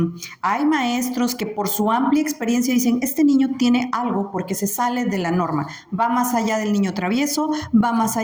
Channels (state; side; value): identical; both; correlation 1.00